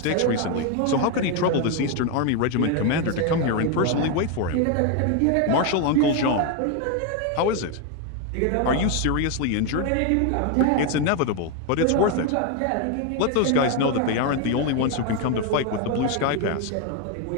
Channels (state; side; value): different; both; correlation 0.01